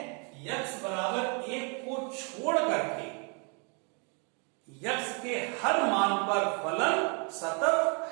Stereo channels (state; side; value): quieter; left; 36.1 dB